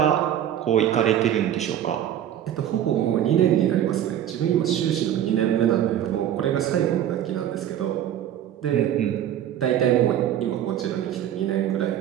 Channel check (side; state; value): left; quieter; 10.8 dB